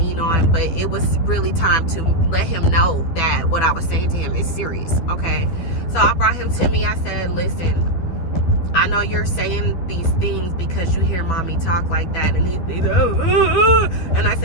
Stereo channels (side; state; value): right; late; 12 ms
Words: on. But it was really time to let him know that what I was saying to him is serious, okay? So I brought him to me. I said, listen, I know you're saying these things because you hear mommy talk like that. And he's and I